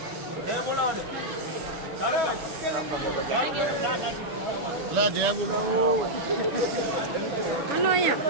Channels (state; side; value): late; left; 7.0 ms